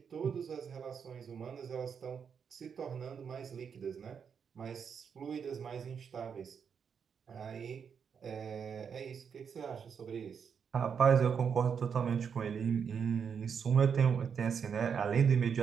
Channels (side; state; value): left; quieter; 6.9 dB